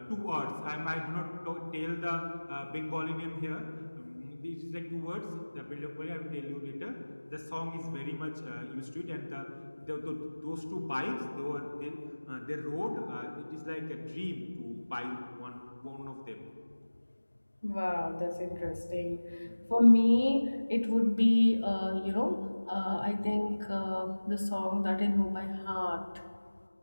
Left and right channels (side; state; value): both; inverted; correlation -1.00